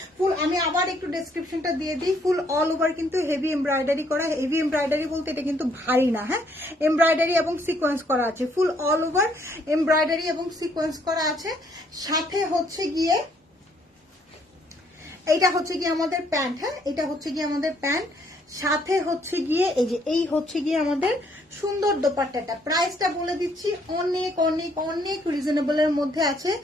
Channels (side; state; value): both; normal; correlation 0.67